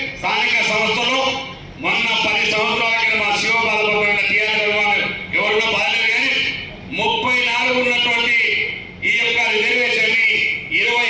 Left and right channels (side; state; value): both; identical; correlation 1.00